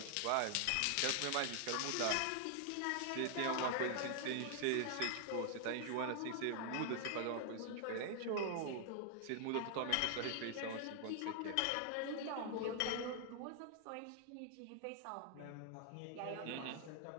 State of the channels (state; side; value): different; both; correlation 0.00